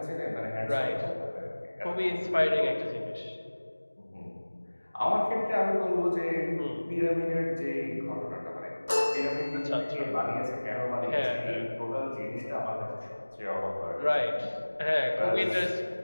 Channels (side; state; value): both; inverted; correlation -1.00